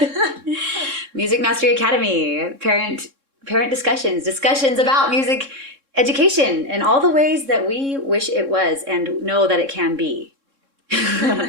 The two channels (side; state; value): left; late; 3.7 ms